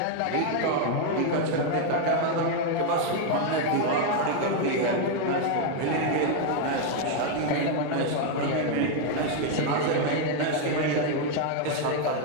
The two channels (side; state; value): both; different; correlation 0.01